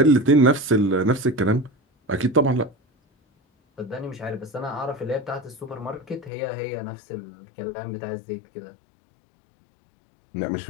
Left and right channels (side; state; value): right; drops out; at 6.3 s